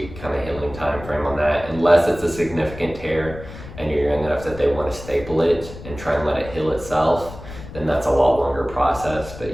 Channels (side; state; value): left; noise; rumble, 14 dB below the sound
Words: kind of healing time frame on that, unless it's a significant tear and you're young enough that they want to staple it and try and let it heal itself, then that's a lot longer process. But